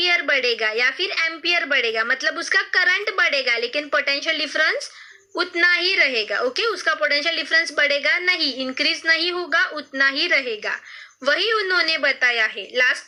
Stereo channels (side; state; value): both; identical; correlation 1.00